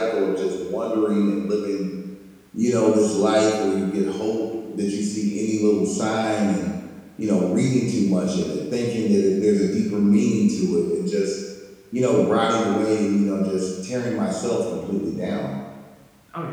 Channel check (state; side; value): identical; both; correlation 1.00